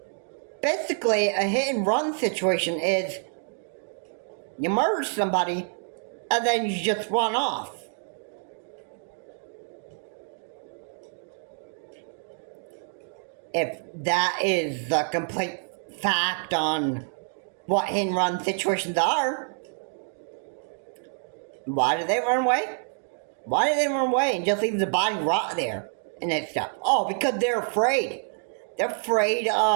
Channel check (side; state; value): left; silent; 60 dB below the other